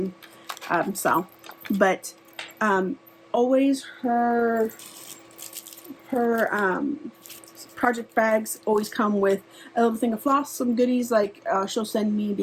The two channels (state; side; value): identical; both; correlation 1.00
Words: style. But always her project bags always come with a little thing of floss, some goodies like she'll send me,